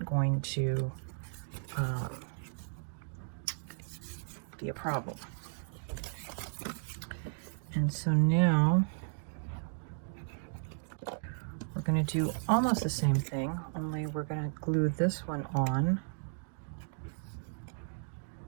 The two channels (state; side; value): silent; left; digital silence